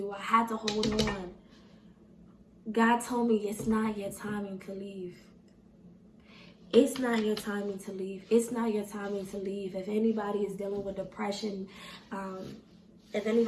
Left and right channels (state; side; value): identical; both; correlation 1.00